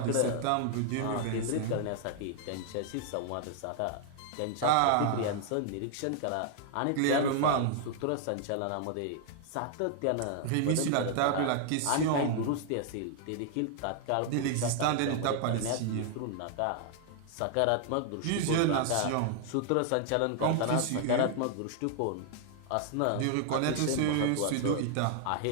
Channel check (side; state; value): both; different; correlation 0.00